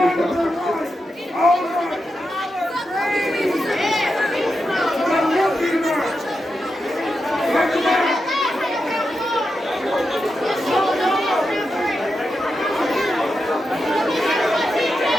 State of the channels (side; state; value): both; normal; correlation 0.88